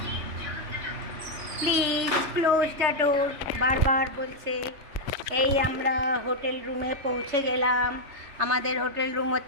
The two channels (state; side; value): late; left; 3.3 ms